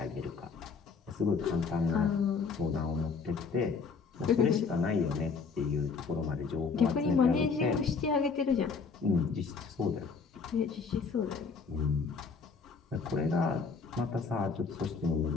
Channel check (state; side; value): quieter; right; 5.1 dB